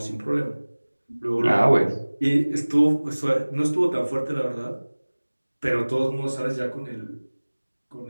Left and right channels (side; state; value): both; inverted; correlation -1.00